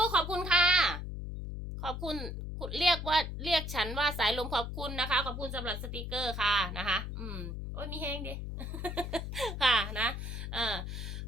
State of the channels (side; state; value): left; noise; hum, 6 dB below the sound